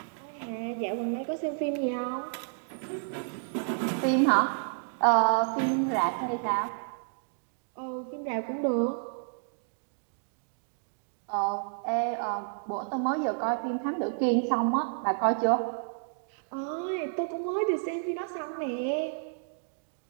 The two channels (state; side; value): silent; left; digital silence